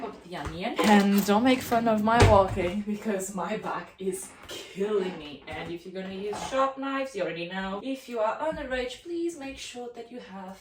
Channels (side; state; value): both; identical; correlation 1.00